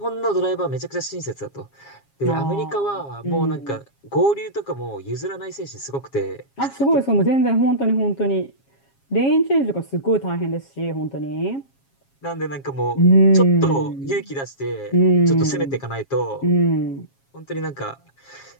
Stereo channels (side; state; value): right; late; 7.3 ms